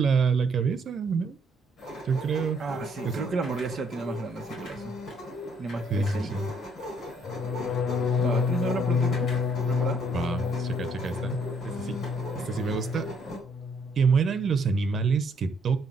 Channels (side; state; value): both; normal; correlation 0.67